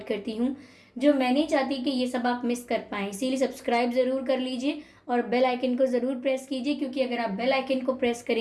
करती हूँ, जो मैं नहीं चाहती कि ये सब आप मिस कर पाएँ। इसीलिए सब्सक्राइब ज़रूर कर लीजिए और बेल आइकन को ज़रूर प्रेस कीजिए, क्योंकि अगर आप बेल आइकन को प्रेस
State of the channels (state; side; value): identical; both; correlation 1.00